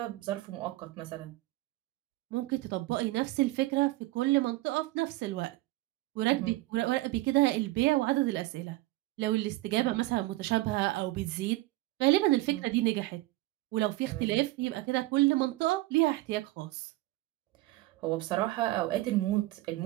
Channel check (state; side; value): quieter; left; 18.5 dB